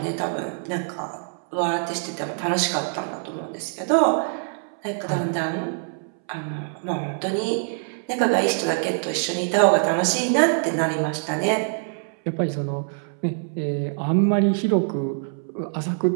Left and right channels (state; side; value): silent; left; 62 dB below the other